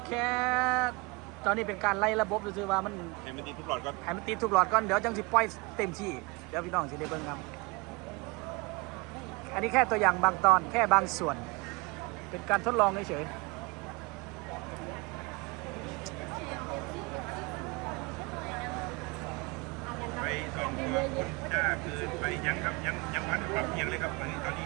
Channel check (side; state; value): left; quieter; 26.5 dB